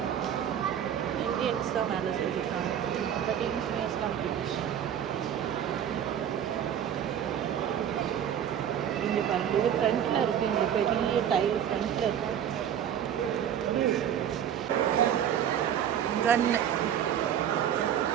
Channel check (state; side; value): quieter; left; 9.5 dB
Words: இந்தியன்ஸ் தான் வேலை செஞ்சுருக்காங்க. பட் இன்ஜினியர்ஸ்லாம் பிரிட்டிஷ். இங்கே பாருங்க, இது ஃப்ரண்ட்டில் இருக்குது. இந்த பெரிய டைல் ஃப்ரண்ட்டில் இருக்குது. கன்னு.